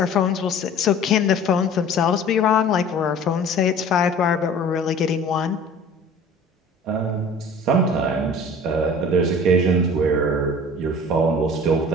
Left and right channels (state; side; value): normal; both; correlation 0.45